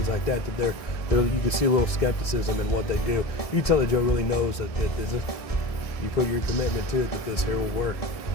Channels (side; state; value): right; late; 1.7 ms